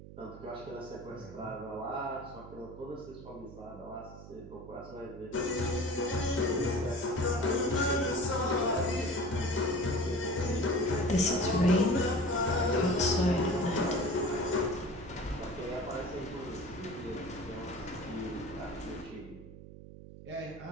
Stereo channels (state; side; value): noise; right; hum, 15 dB below the sound